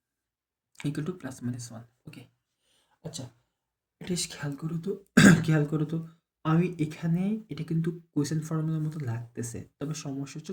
equal to plus minus 1। Okay, আচ্ছা, এটা খেয়াল করো তো, খেয়াল করো তো, আমি এখানে এটা কিন্তু কোয়েশ্চেন ফর্মুলার মতো লাগতেছে, তবে সমস্যা হচ্ছে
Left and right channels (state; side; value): identical; both; correlation 1.00